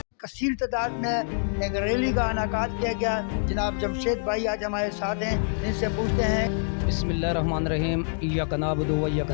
कसीर तादाद में एक रैली का इनेकाद किया गया। जनाब जमशेद भाई आज हमारे साथ हैं, इनसे पूछते हैं। बिस्मिल्लाहिर्रहमानिर्रहीम, इय्याका नअबुदु व इय्याका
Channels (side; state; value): right; silent; digital silence